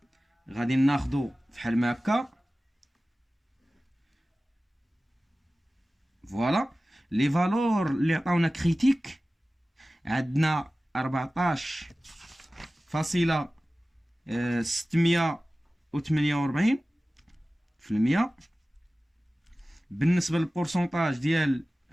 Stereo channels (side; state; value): both; normal; correlation 0.96